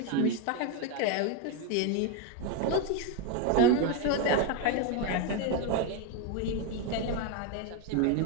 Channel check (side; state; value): both; different; correlation 0.02